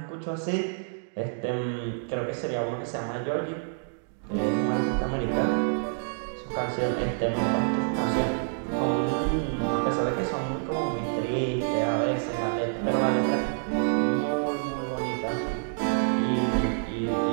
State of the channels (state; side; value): silent; left; digital silence